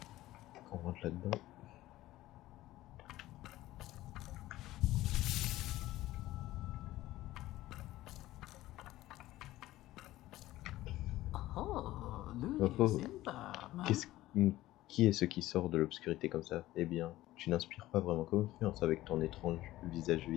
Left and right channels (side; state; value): right; quieter; 16.1 dB